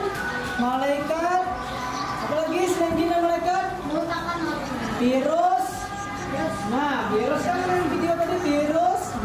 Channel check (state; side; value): identical; both; correlation 1.00